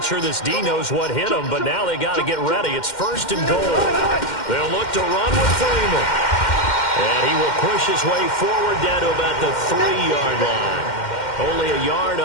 sure this D knows what hit him, but now they got to get ready. It's first and goal. They'll look to run with Freeman. And he will push his way forward down to about the 3-yard line. Only a yard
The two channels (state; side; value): late; right; 2.1 ms